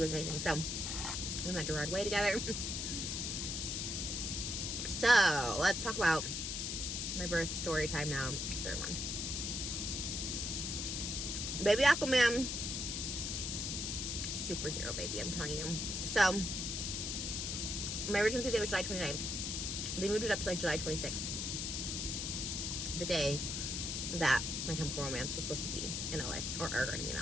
amazing. So we went to Broadway together. So let's talk about my birth story time now. Third one. Baby Aquaman. Superhero baby, I'm telling you. So my original due date was July 29th. They moved it up to like July 26th. The day that My Chemical Romance was supposed to be in LA. Or going to be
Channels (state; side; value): noise; left; hiss, 2 dB below the sound